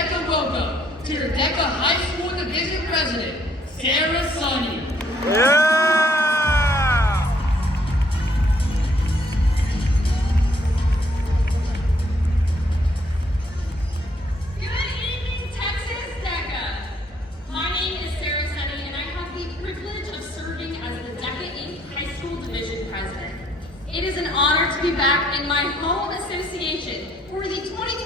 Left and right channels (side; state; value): both; normal; correlation 0.67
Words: welcome to your DECA High School Division President, Sarah Sonny. Yeah! It is an honor to be back in my home association for the